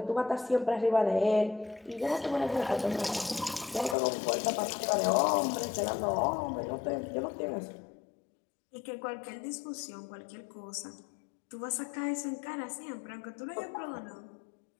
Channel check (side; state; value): right; drops out; at 4.0 s